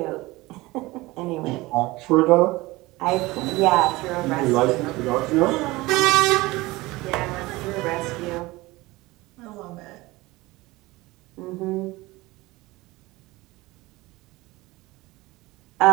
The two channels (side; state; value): left; quieter; 20.6 dB